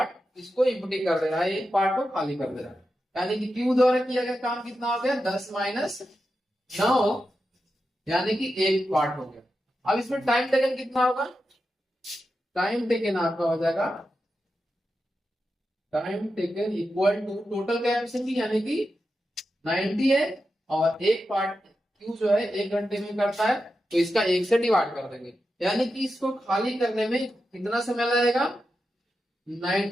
इसको इम्पटी कर दे रहा है, एक पार्ट को खाली कर दे रहा है, यानी कि क्यू द्वारा किया गया काम कितना हो गया, 10 - 9, यानी कि एक पार्ट हो गया। अब इसमें टाइम टेकन कितना होगा, टाइम टेकन आपका हो जाएगा, time taken equal to total capacity, यानी कि 90 है, और एक पार्ट क्यू जो है 1 घंटे में करता है, तो इसका 1 से डिवाइड कर देंगे, यानी कि इसको खाली करने में कितना समय लगेगा,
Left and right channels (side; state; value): both; normal; correlation 0.89